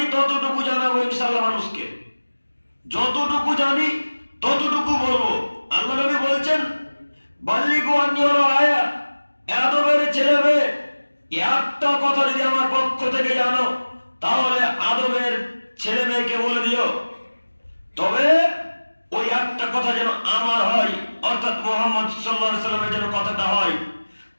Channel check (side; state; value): both; inverted; correlation -1.00